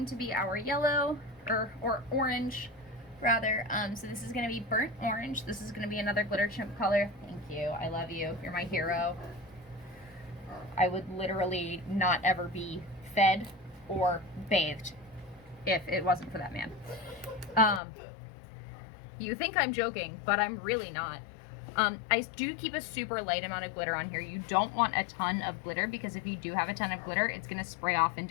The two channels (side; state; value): right; drops out; at 17.8 s